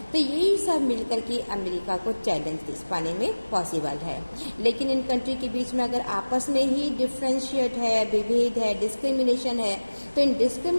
तो यही सब मिलकर के अमेरिका को चैलेंज दे पाने में पॉसिबल है। लेकिन इन कंट्री के बीच में अगर आपस में ही डिफ्रेंशिएट है, विभेद है, डिस्क्रिमिनेशन है, तो इन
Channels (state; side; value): inverted; both; correlation -1.00